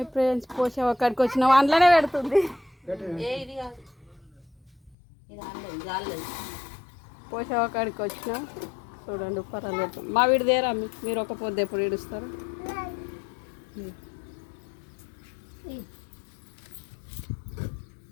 friends, పోషా అక్కడికి వచ్చినాం అందులోనే పెడుతుంది. పోషా అక్కడికి వచ్చినాం చూడండి. పర్వాలేదు పెడుతుంది. మా వీడి దేరా మీరు ఒక పొద్దు ఎప్పుడు ఏడుస్తారు?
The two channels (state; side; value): drops out; right; at 5.0 s